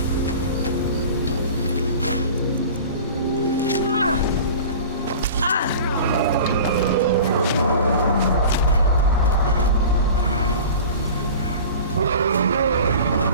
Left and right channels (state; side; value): inverted; both; correlation -0.38